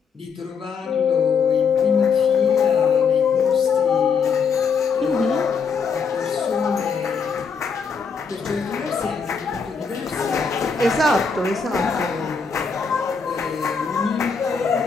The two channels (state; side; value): quieter; right; 5.6 dB